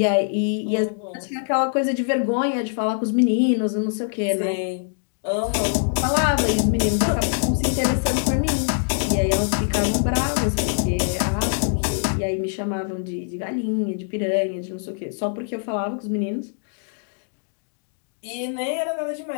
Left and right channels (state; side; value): silent; right; digital silence